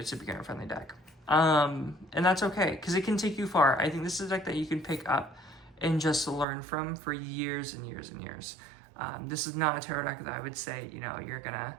a beginner-friendly deck, and that's okay because it can take you far. I think this is a deck that you can pick up and just learn from for years and years and years. This is not a tarot deck that I would say you're gonna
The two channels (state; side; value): drops out; left; at 6.5 s